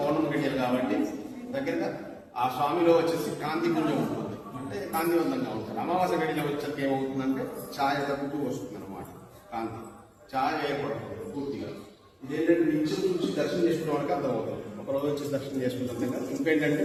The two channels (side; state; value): both; identical; correlation 1.00